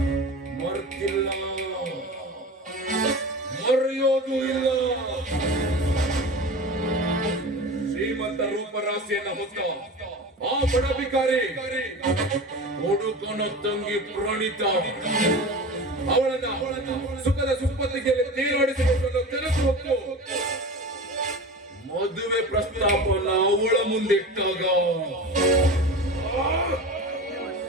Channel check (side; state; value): both; normal; correlation 0.32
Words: ಮರ್ತಿಲ್ಲ, ಮರೆಯೋದು ಇಲ್ಲ. ಶ್ರೀಮಂತ ರೂಪರಾಶಿಯನ್ನ ಹೊತ್ತ ಆ ಬಡಬಿಕಾರಿ ಹುಡುಕನ ತಂಗಿ ಪ್ರಣೀತ ಅವಳನ್ನ ಸುಖದ ಸುಪ್ಪತ್ತಿಗೆ ತೀರಾಡಿಸಿಕೊಂಡು ತೆರೆದು ಹೊತ್ತು ಮದುವೆ ಪ್ರಸ್ತಾಪನ ಅವಳ ಮುಂದಿಟ್ಟಾಗ